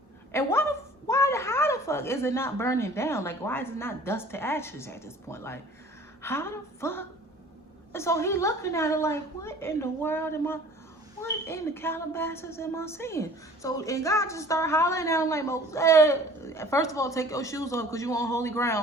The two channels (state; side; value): normal; both; correlation 0.49